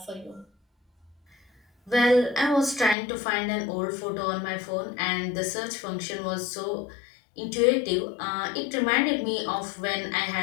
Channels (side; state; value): right; drops out; at 3.0 s